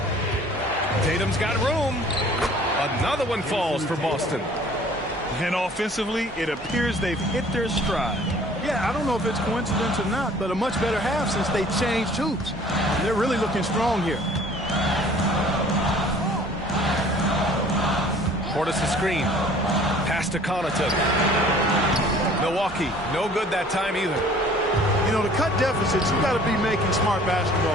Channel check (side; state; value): both; normal; correlation 0.52